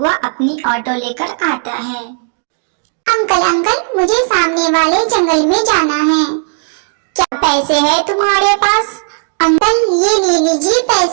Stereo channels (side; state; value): left; silent; digital silence